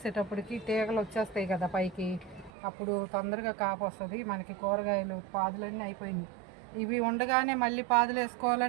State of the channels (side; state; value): left; drops out; at 2.5 s